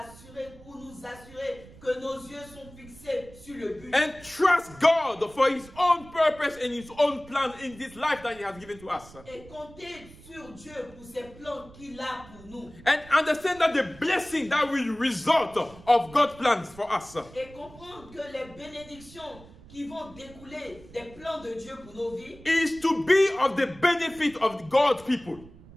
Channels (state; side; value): noise; right; rumble, 20 dB below the sound